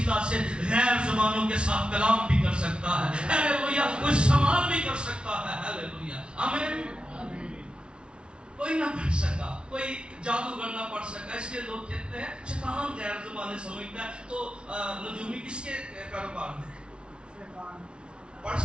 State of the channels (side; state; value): left; late; 0.057 ms